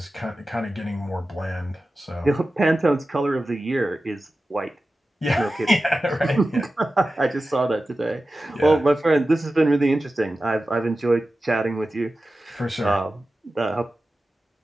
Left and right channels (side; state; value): both; normal; correlation 0.94